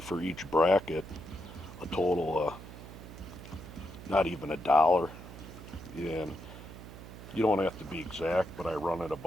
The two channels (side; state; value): right; noise; hum, 14 dB below the sound